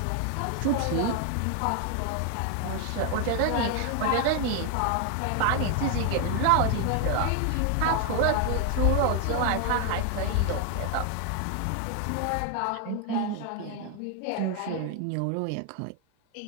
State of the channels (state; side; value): different; both; correlation 0.01